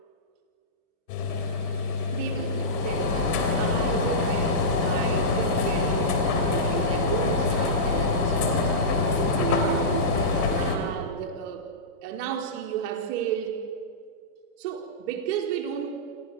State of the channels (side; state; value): left; late; 1.3 ms